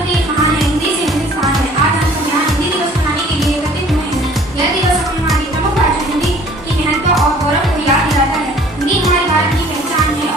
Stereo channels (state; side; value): normal; both; correlation 0.52